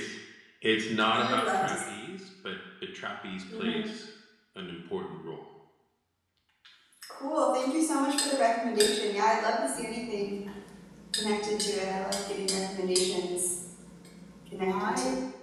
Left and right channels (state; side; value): identical; both; correlation 1.00